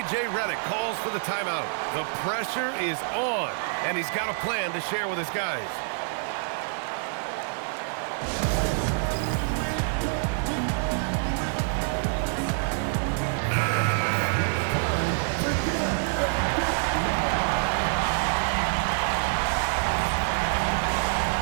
Redick calls for the timeout. The pressure is on, and he's got a plan to share with his guys.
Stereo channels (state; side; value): silent; left; digital silence